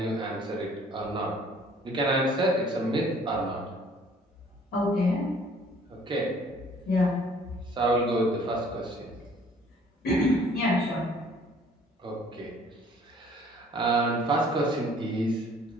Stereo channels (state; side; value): normal; both; correlation 0.56